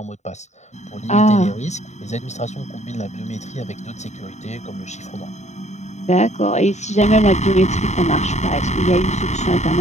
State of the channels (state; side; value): late; right; 0.33 ms